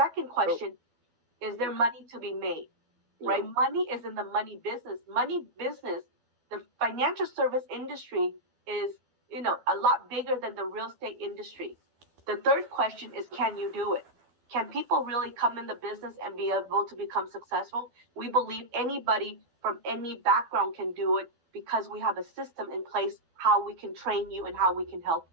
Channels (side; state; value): left; late; 12 ms